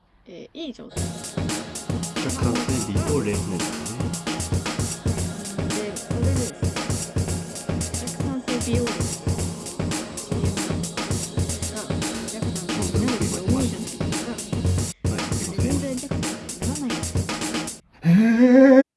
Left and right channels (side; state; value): both; identical; correlation 1.00